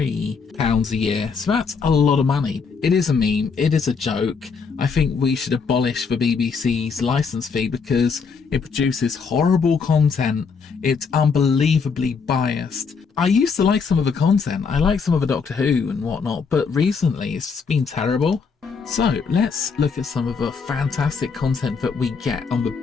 a year. So that's a lot of money. It is a meme. It is a joke. I think we should abolish the BBC's license fee because it produces horrible content. It's unbelievably biased. I used to like some of the content. I like some of the Doctor Who and whatnot, but recently it's just been terrible. So let's look at some of the fantastic content that we get on the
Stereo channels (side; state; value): right; quieter; 5.4 dB